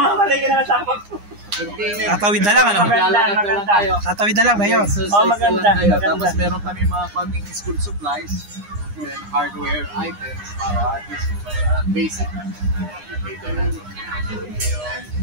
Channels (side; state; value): left; late; 9.8 ms